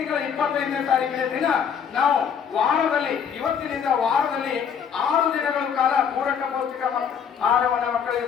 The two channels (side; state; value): right; quieter; 7.4 dB